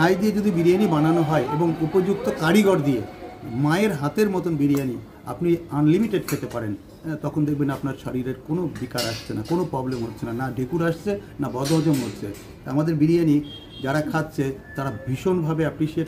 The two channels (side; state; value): both; identical; correlation 1.00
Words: দিয়ে যদি বিরিয়ানি বানানো হয় এবং উপযুক্ত কারিগর দিয়ে, মায়ের হাতের মতন বিরিয়ানি আপনি আনলিমিটেড খেতে পারেন, তখন দেখবেন আপনার শরীরের কোনো বিকার আসছে না, কোনো প্রবলেম হচ্ছে না, না ঢেকুর আসছে, না বদহজম হচ্ছে। আমাদের বিরিয়ানি যারা খাচ্ছে তারা ভীষণভাবে অ্যাপ্রিসিয়েট